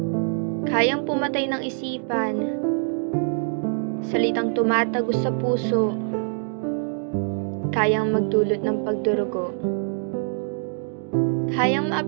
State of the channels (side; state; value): left; silent; 59 dB below the other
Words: kayang pumatay ng isipan. Salitang tumatagos sa puso, kayang magdulot ng pagdurugo. Kayang